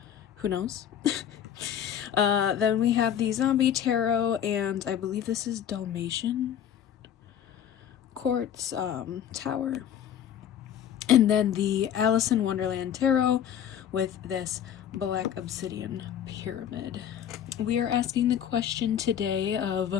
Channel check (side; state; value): right; quieter; 9.6 dB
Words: who knows? Then we have the Zombie Tarot, and I believe this is Dalmatian Quartz Tower. And then the Alice in Wonderland Tarot with this Black Obsidian Pyramid. We are asking the question today